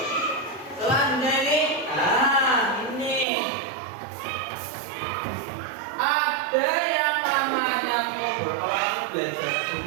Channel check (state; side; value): drops out; left; at 3.2 s